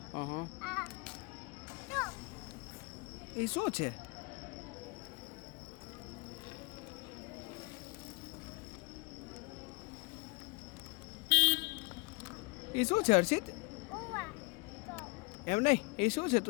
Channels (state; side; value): quieter; right; 28.2 dB